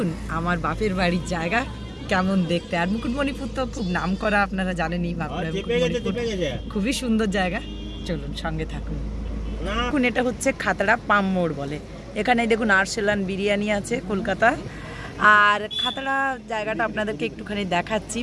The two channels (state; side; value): identical; both; correlation 1.00